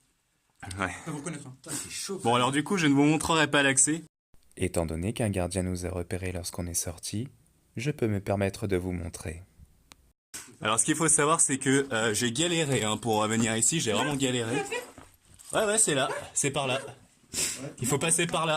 Ouais. Ça vous connaître. C'est chaud. Bon, alors du coup, je ne vous montrerai pas l'accès. Étant donné qu'un gardien nous a repérés lorsqu'on est sorti, je peux me permettre de vous montrer. Alors, ce qu'il faut savoir, c'est que j'ai galéré hein, pour venir ici. J'ai vraiment galéré. Ouais, c'est là. C'est par là. Il faut passer par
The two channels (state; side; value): identical; both; correlation 1.00